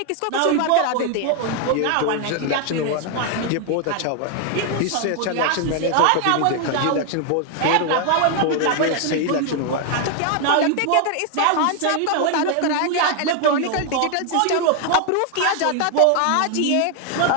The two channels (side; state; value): both; different; correlation 0.01